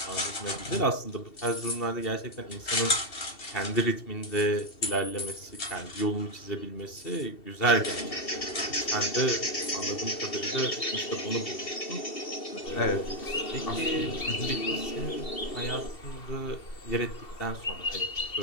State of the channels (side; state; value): right; late; 2.7 ms